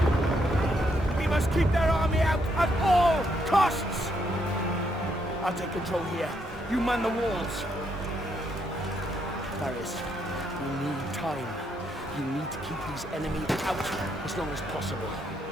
We must keep their army out at all costs! I'll take control here. You man the walls. Ryse, we need time. You need to keep these enemies out as long as possible.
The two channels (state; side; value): normal; both; correlation 0.75